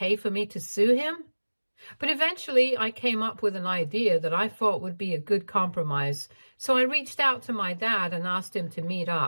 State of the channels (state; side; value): inverted; both; correlation -1.00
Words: for me to sue him? But eventually I came up with an idea that I thought would be a good compromise. So I reached out to my dad and asked him to meet